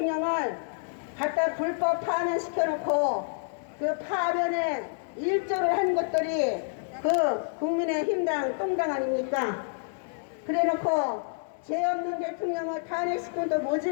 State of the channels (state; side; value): silent; right; digital silence